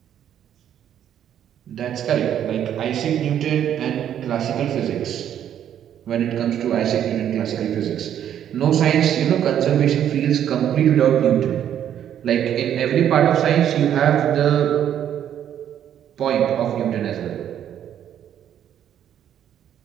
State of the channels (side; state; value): left; quieter; 10.0 dB